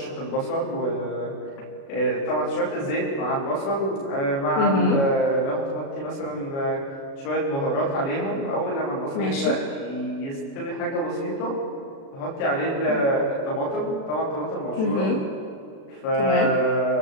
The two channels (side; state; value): right; late; 36 ms